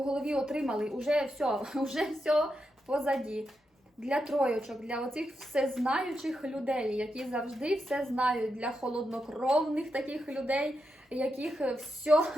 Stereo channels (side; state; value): both; normal; correlation 0.86